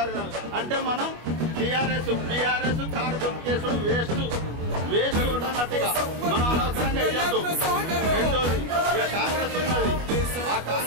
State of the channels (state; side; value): late; left; 25 ms